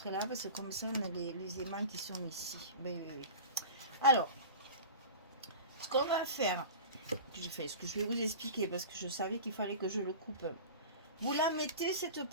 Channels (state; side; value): inverted; both; correlation -0.34